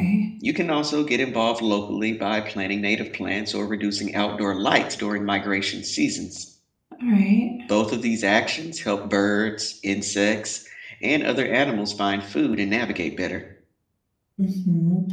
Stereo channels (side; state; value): both; identical; correlation 1.00